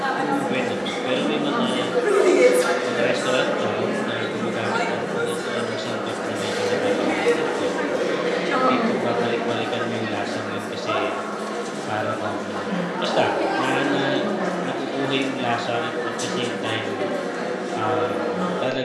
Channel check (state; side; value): identical; both; correlation 1.00